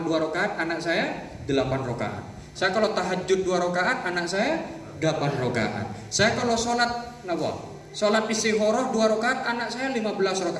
2 rakaat, anak saya 8 rakaat. Saya kalau tahajud 2 rakaat, anak saya 8 rakaat. Saya kalau sholat istikharah 2 rakaat, anak saya 16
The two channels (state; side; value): identical; both; correlation 1.00